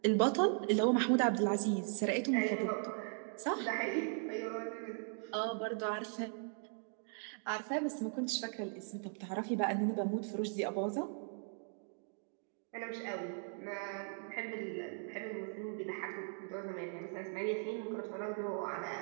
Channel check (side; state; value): left; silent; 52 dB below the other